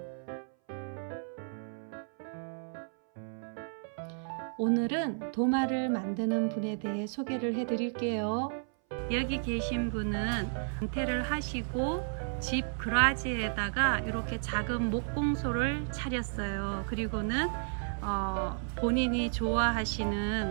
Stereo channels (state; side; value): silent; left; 56 dB below the other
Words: 오늘은 도마를 만드는 분에 대해 소개를 해드릴게요. 여기 계신 분은 은퇴를 하시고 집 그라지에다가 이렇게 작은 목공소를 차렸어요. 그리고는 본인이